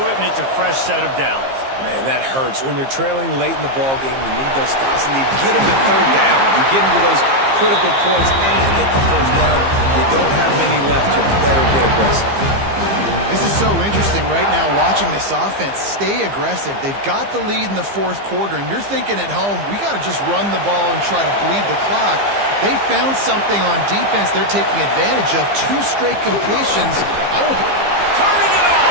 it, and it's a fresh set of downs. Man, that hurts. When you're trailing late in the ball game, you need those stops, and you get them to third down. You get into those critical points and get the first down. You don't have many left. You better get aggressive. This is so interesting right now watching this offense stay aggressive. They've got the lead in the 4th quarter, and you're thinking at home, we got to just run the ball and try to bleed the clock. They found something on defense they're taking advantage of. 2 straight completions. Turning it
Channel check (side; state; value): left; late; 15 ms